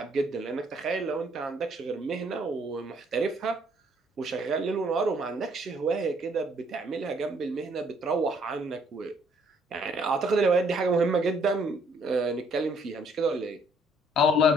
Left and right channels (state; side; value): normal; both; correlation 0.65